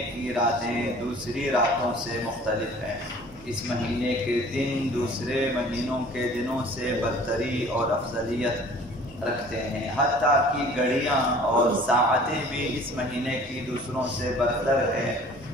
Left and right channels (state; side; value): normal; both; correlation 0.49